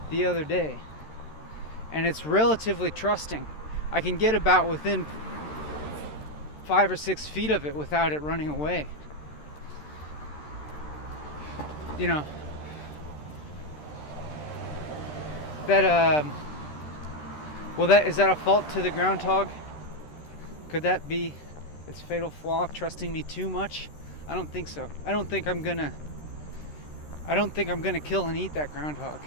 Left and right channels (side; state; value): right; late; 13 ms